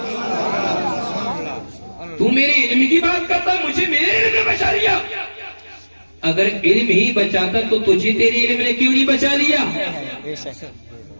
تو میرے علم کی بات کرتا، مجھے میرے علم نے بچا لیا. اگر علم ہی بچاتا تو تجھے تیرے علم نے کیوں نہیں بچا لیا؟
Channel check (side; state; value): both; inverted; correlation -1.00